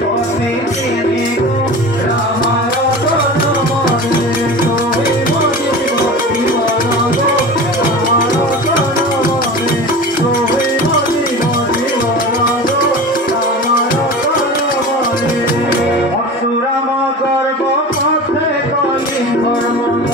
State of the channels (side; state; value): both; normal; correlation 0.33